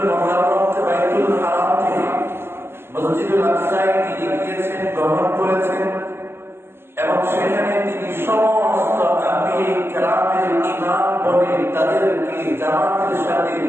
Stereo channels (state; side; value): late; left; 0.12 ms